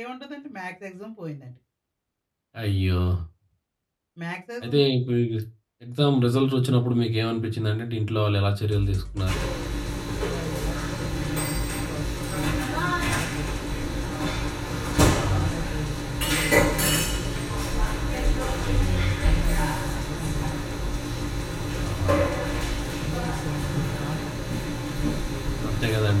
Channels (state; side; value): identical; both; correlation 1.00